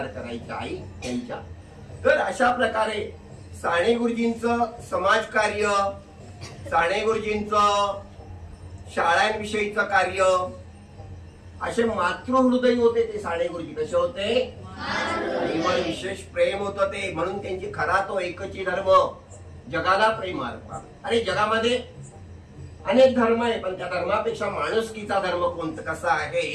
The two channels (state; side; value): identical; both; correlation 1.00